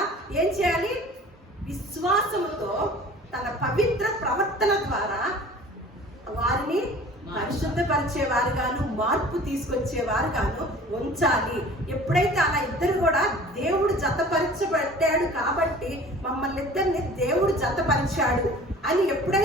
ఏం చేయాలి? విశ్వాసముతో తన పవిత్ర ప్రవర్తన ద్వారా వారిని పరిశుద్ధపరిచేవారుగాను, మార్పు తీసుకొచ్చేవారుగాను ఉంచాలి. ఎప్పుడైతే అలా ఇద్దరు కూడా దేవుడు జతపరచబట్టాడు కాబట్టి మమ్మల్ని ఇద్దరిని దేవుడు జతపరిచాడు అని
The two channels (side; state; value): both; normal; correlation 0.45